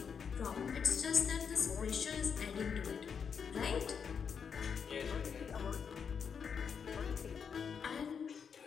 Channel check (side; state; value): right; quieter; 6.7 dB